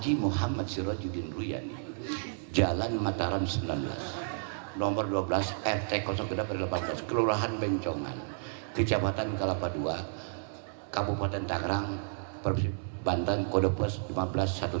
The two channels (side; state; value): left; silent; 57 dB below the other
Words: Muhammad Sirajuddin Ruyani Jalan Mataram 19 nomor 12 RT 018 Kelurahan Bencongan Kecamatan Kelapa II Kabupaten Tangerang Provinsi Banten kode pos